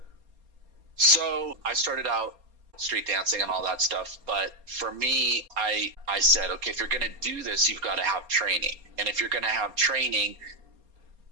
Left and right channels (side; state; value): left; late; 4.3 ms